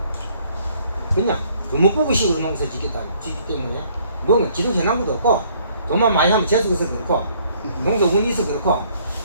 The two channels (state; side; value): inverted; both; correlation -0.62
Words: 그냥 금목부부식으로 농사 짓기 때문에 뭔가 지도 해놓은 것도 없고 돈만 많이 하면 재수해서 그렇고 농사 운이 있어 그렇고